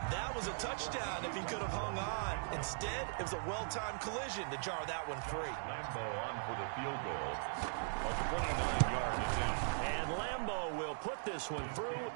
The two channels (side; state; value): left; silent; digital silence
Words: That was a touchdown if he could have hung on. Instead, it was a well-timed collision to jar that one free. Lambo on for the field goal. A 29-yard attempt. And Lambo will put this one through.